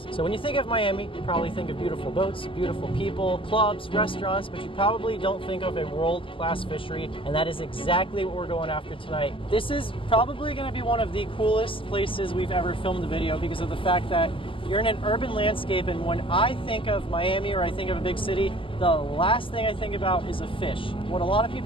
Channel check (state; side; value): late; right; 0.25 ms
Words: So when you think of Miami, you probably think of beautiful boats, beautiful people, clubs, restaurants, but you probably don't think of a world-class fishery, and that is exactly what we're going after tonight. This is probably going to be one of the coolest places we've ever filmed a video because of the fact that you're in an urban landscape, and when I think of Miami or I think of a big city, the last thing I think about is a fish. What a lot of